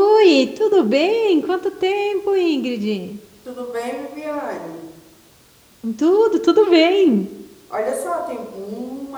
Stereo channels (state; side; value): identical; both; correlation 1.00